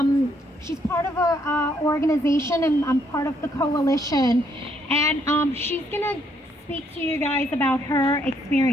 She's part of a organization, and I'm part of the coalition, and she's gonna speak to you guys about her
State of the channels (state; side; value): normal; both; correlation 0.71